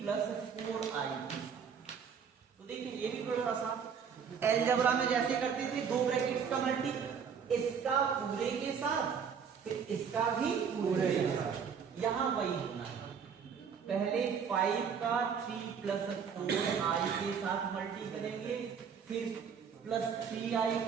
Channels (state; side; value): quieter; left; 6.8 dB